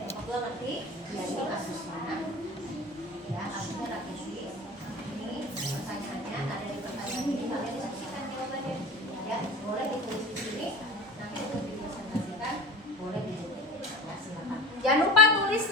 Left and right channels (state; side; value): normal; both; correlation 0.34